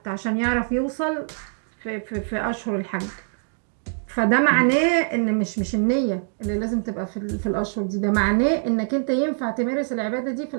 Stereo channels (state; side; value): silent; left; digital silence